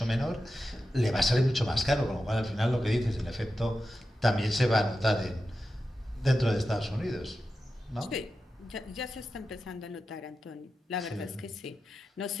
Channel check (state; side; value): normal; both; correlation 0.91